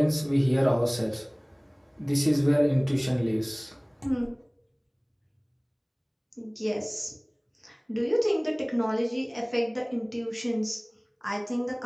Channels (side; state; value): both; identical; correlation 1.00